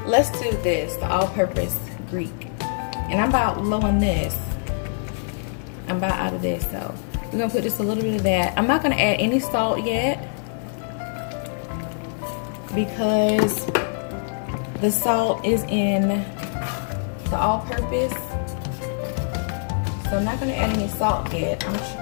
Let's do this, the all-purpose Greek. And I'm about low on this. I'm about out of this, so we're gonna put just a little bit of that. I'm not gonna add any salt yet because the salt is in the all-purpose. So I'm not gonna add any salt yet.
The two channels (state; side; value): silent; right; digital silence